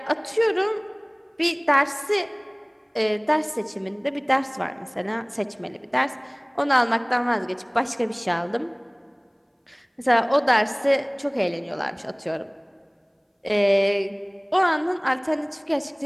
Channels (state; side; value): identical; both; correlation 1.00